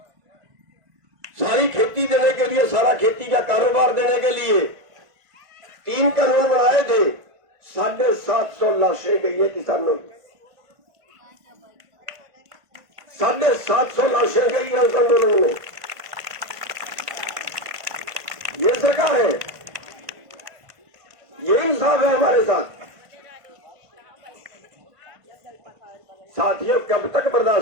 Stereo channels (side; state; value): left; late; 1.5 ms